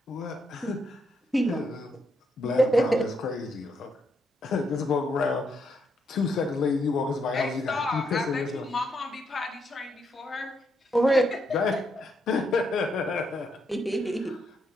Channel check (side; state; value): both; normal; correlation 0.78